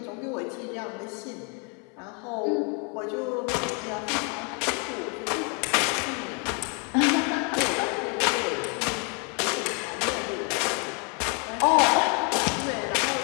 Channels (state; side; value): quieter; right; 36.0 dB